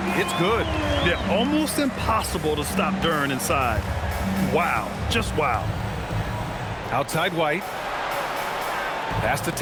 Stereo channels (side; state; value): both; identical; correlation 1.00